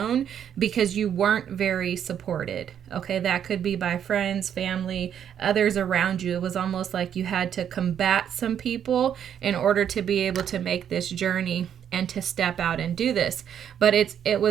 because you weren't very supported. Okay, that could be by friends, family, others around you. It was almost like you had to combat some people in order to be able to make this journey and to step out and do this. But it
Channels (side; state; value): left; quieter; 9.1 dB